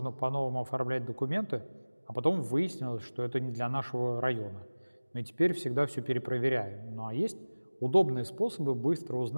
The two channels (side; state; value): both; inverted; correlation -1.00